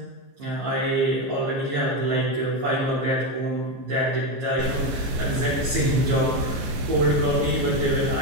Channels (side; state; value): left; late; 15 ms